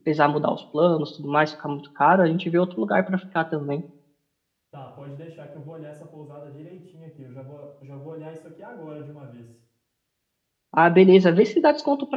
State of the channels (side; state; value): both; identical; correlation 1.00